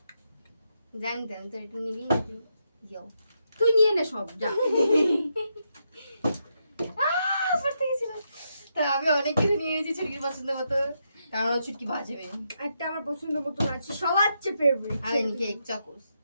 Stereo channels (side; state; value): both; inverted; correlation -0.81